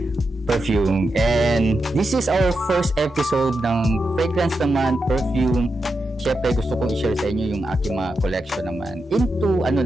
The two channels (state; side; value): normal; both; correlation 0.87